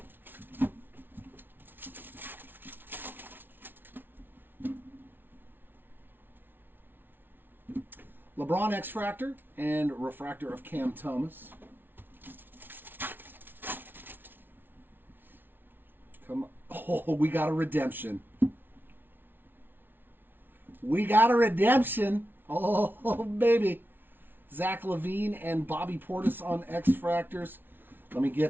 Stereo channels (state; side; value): late; left; 0.098 ms